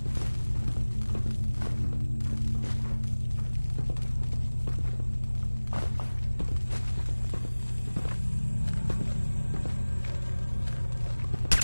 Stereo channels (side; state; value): both; inverted; correlation -1.00